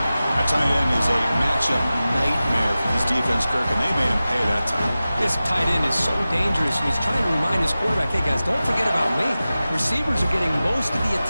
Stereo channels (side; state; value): both; inverted; correlation -0.95